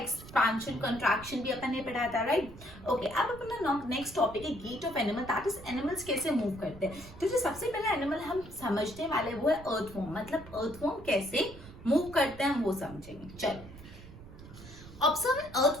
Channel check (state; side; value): noise; right; rumble, 17 dB below the sound